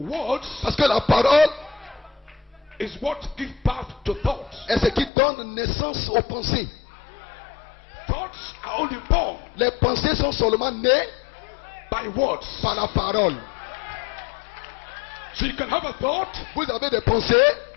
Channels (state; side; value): drops out; right; at 5.1 s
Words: Parce que la parole is what gives birth to thoughts. est ce qui donne naissance aux pensées. Thoughts are only born Les pensées sont seulement nées by words. par la parole. So you can have a thought, Vous avez des pensées,